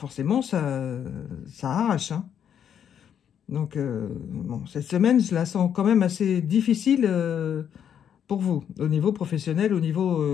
ça arrache. Hein. Donc, bon, cette semaine, je la sens quand même assez difficile pour vous, au niveau professionnel, au niveau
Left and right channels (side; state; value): right; quieter; 8.8 dB